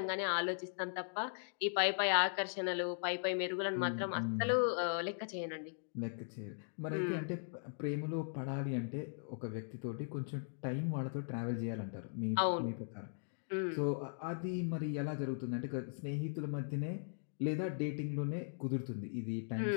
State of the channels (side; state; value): right; silent; digital silence